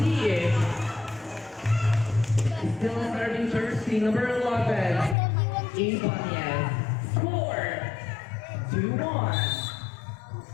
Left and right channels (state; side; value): drops out; right; at 5.2 s